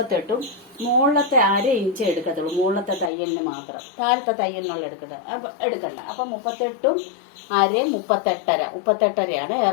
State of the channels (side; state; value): right; drops out; at 3.1 s